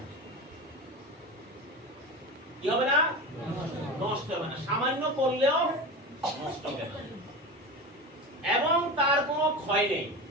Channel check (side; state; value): both; normal; correlation 0.27